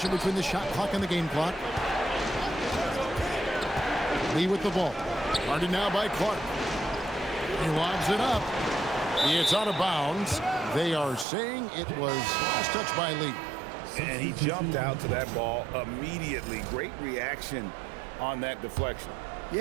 between the shot clock and the game clock. Lee with the ball. Guarded now by Clark. He lobs it up. It's out of bounds. They are saying it was last touch by Lee. And he jumped out to that ball immediately. Great reaction on that deflection.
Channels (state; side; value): drops out; left; at 11.2 s